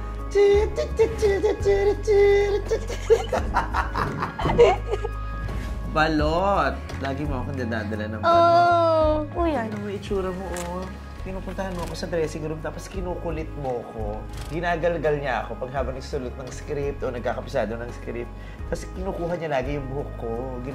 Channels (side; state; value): both; identical; correlation 1.00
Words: Balot! Lagi mo akong dadadala ng balot. Oh, kuya. Ano mo itsura mo, oh. Pinupuntahan mo ako sa dressing room tapos kinukulit mo ko. Ginagalgal niya ako pag habang nagsusulat ng script o nagkakapisado ng script. Tapos kinukuha niya lagi yung buhok ko.